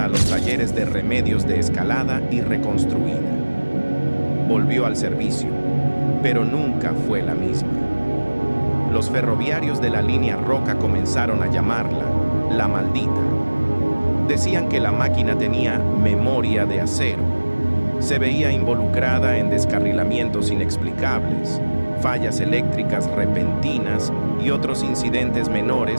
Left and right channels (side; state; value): both; inverted; correlation -1.00